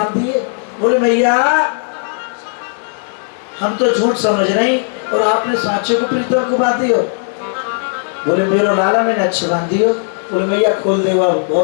दिए। बोले मैया हम तो झूठ समझ रही और आपने साचे को प्रीतम को बांध दियो। बोले मेरो लाला मैंने अच्छे बांध दियो, बोले मैया खोल दे, अब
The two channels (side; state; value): right; silent; digital silence